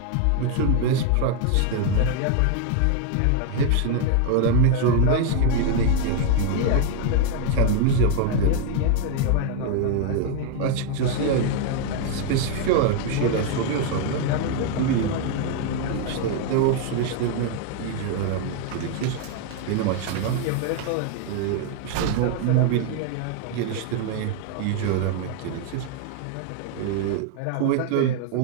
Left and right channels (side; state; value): both; different; correlation 0.00